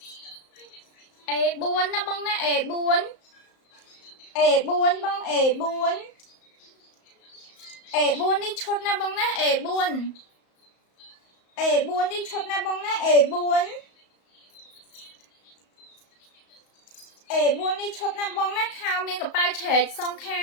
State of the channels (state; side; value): late; right; 34 ms